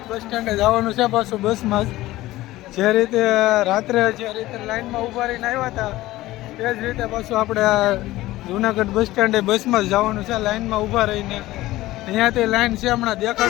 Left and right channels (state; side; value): quieter; right; 17.0 dB